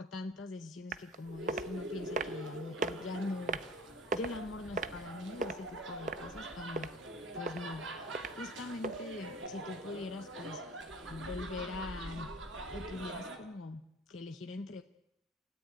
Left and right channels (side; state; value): both; normal; correlation 0.43